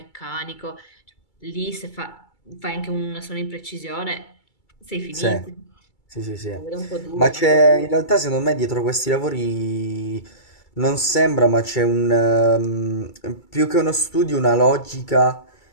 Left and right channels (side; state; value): right; late; 2.3 ms